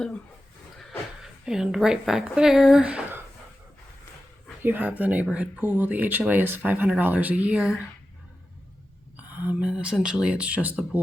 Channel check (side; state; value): both; normal; correlation 0.93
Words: And right back there, you have the neighborhood pool. The HOA is $500 a year. And essentially it's just the